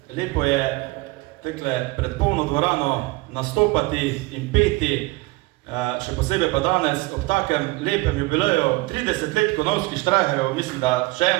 Lepo je tekle pred polno dvorano nastopati in peti, še posebej pa danes ob takem lepem jubileju 30 let Konavskih Štrajharjev, mislim, da še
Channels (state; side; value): quieter; left; 22.0 dB